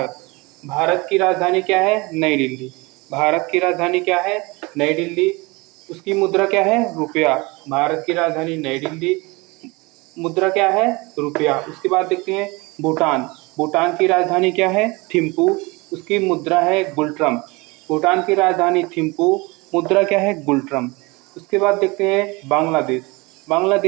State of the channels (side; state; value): left; quieter; 25.2 dB